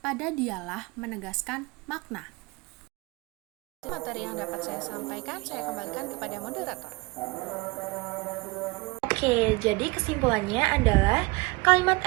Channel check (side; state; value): left; quieter; 25.3 dB